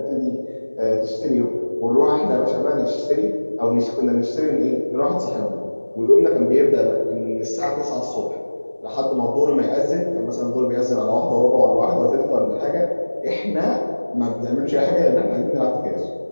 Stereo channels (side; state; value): both; inverted; correlation -1.00